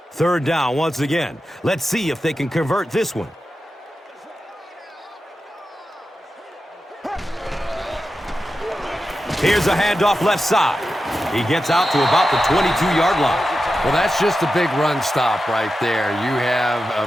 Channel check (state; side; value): normal; both; correlation 0.91